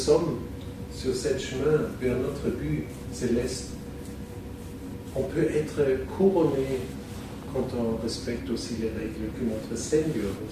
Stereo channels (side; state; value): both; identical; correlation 1.00